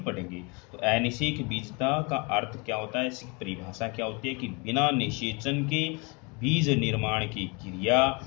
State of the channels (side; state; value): right; quieter; 30.2 dB